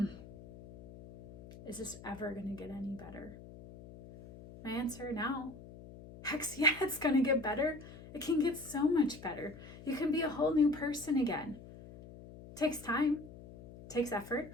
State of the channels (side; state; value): left; noise; hum, 16 dB below the sound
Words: is this ever going to get any better? My answer now, heck yeah, it's going to get better. It can get so much better. You can be a whole new person again. It takes time, takes effort,